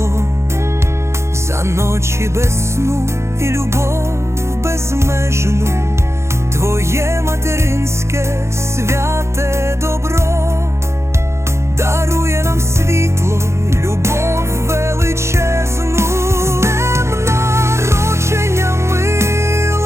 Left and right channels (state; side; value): late; left; 0.13 ms